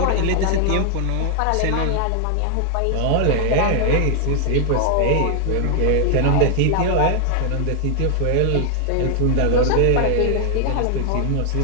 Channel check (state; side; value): different; both; correlation 0.00